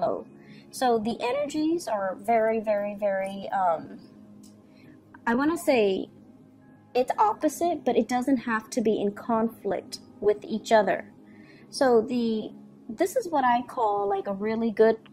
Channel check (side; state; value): both; identical; correlation 1.00